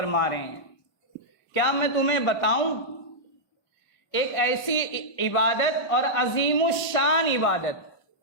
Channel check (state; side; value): late; right; 1.6 ms